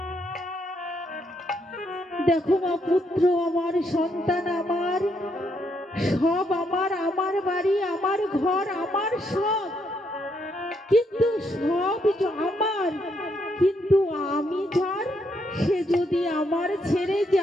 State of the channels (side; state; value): both; normal; correlation 0.76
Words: দেখো মা, পুত্র আমার, সন্তান আমার, সব আমার, আমার বাড়ি, আমার ঘর, আমার সব, কিন্তু সব আমার, কিন্তু আমি যার, সে যদি আমার ছেড়ে